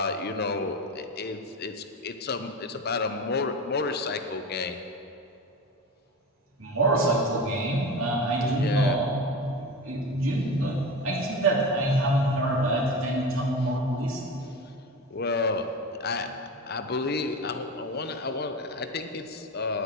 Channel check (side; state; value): both; normal; correlation 0.27